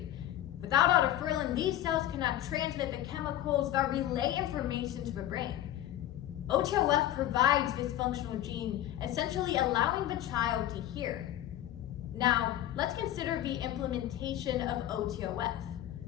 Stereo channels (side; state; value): right; quieter; 13.0 dB